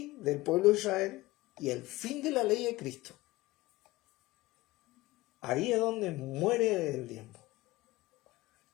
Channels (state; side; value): quieter; right; 19.6 dB